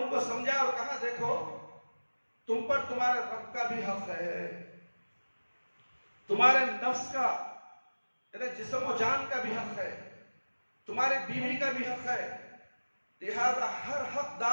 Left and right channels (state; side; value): inverted; both; correlation -1.00